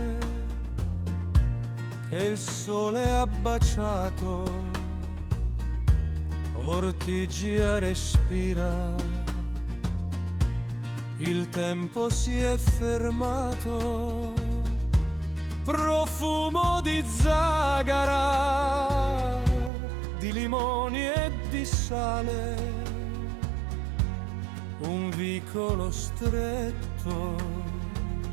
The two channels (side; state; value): left; drops out; at 19.7 s